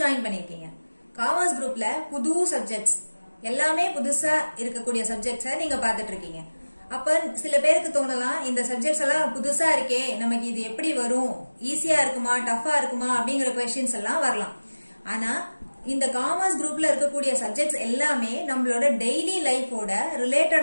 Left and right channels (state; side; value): inverted; both; correlation -1.00